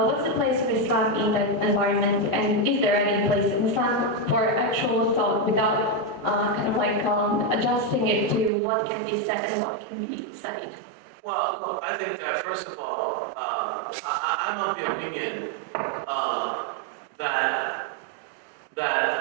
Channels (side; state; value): left; drops out; at 8.5 s